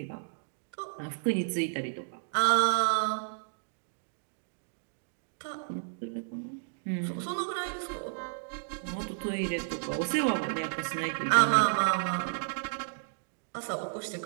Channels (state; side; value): silent; left; digital silence